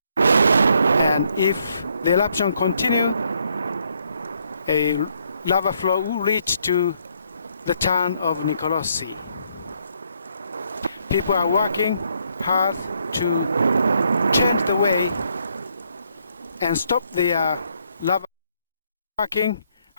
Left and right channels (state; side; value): inverted; both; correlation -0.73